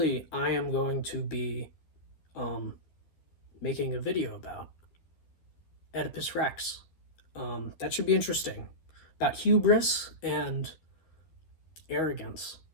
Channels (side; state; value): right; late; 12 ms